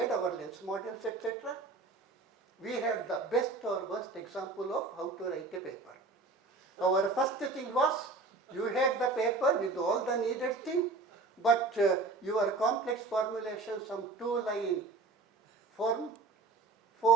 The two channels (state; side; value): quieter; left; 3.6 dB